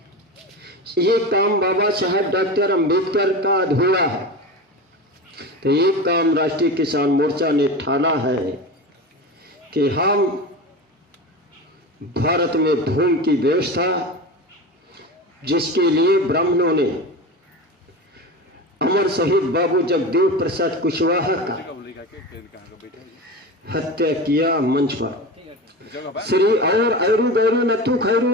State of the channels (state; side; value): normal; both; correlation 0.26